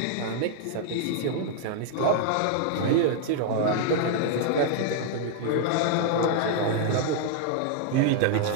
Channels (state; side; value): different; both; correlation 0.00